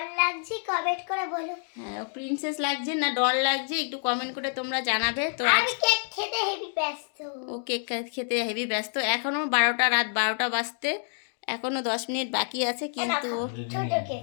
লাগছে কমেন্ট করে বলো। হ্যাঁ প্রিন্সেস লাগছে না ডল লাগছে একটু কমেন্ট করে তোমরা জানাবে। তো আমি কেক খেতে হেভি ব্যস্ত। ও কেক খেতে হেভি ব্যস্ত। এখনো 12টা রাত 12টা বাজতে এখনো 10 মিনিট বাকি আছে কিন্তু ছোট কেক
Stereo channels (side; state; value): right; silent; 60 dB below the other